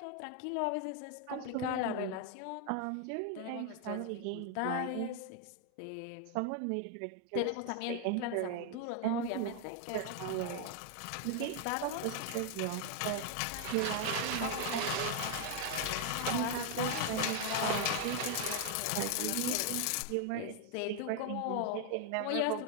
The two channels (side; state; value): both; different; correlation 0.00